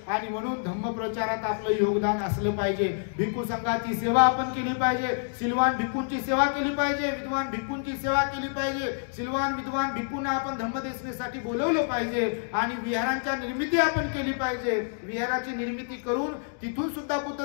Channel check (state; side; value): silent; right; digital silence